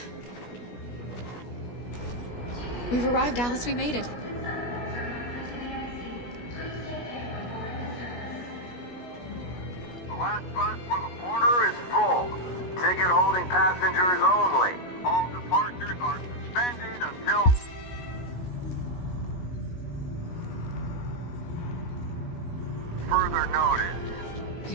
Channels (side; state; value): right; late; 17 ms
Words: We've arrived, Alice. We made it. The last bus for the border is full. Ticket holding passengers only. All departures are suspended until... further notice. We